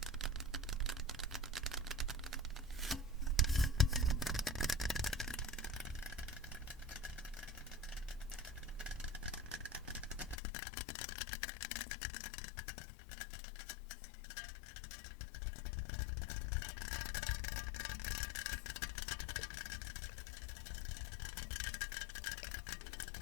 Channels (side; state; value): right; drops out; at 10.4 s